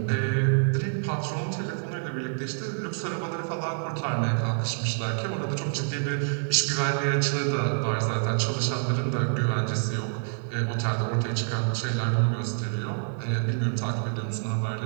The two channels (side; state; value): left; silent; 60 dB below the other